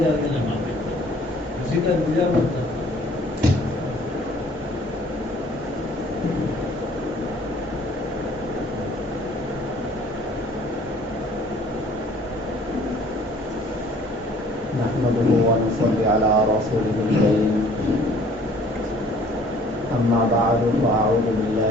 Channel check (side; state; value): both; normal; correlation 0.55